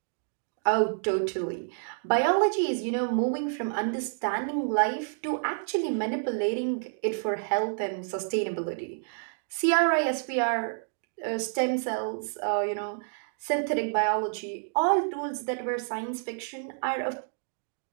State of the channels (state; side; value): silent; left; digital silence